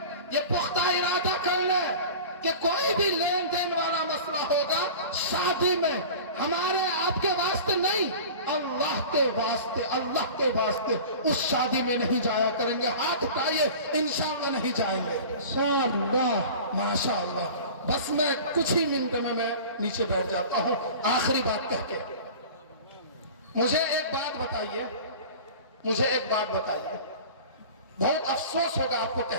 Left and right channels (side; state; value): both; inverted; correlation -0.38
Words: یہ پختہ ارادہ کر لیں کہ کوئی بھی لین دین والا مسئلہ ہوگا شادی میں ہمارے آپ کے واسطے نہیں، اللہ کے واسطے، اللہ کے واسطے اس شادی میں نہیں جایا کریں گے۔ ہاتھ اٹھائیے، انشاءاللہ نہیں جائیں گے۔ انشاءاللہ، ماشاءاللہ۔ بس میں کچھ ہی منٹ میں نیچے بیٹھ جاتا ہوں آخری بات کہہ کے۔ مجھے ایک بات بتائیے، مجھے ایک بات بتائیے، بہت افسوس ہوگا آپ کو